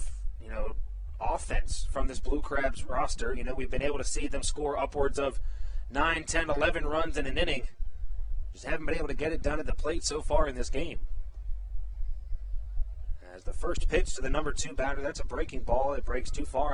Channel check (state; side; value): identical; both; correlation 1.00